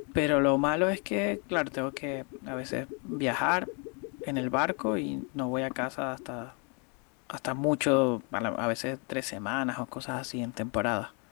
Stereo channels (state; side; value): quieter; right; 35.1 dB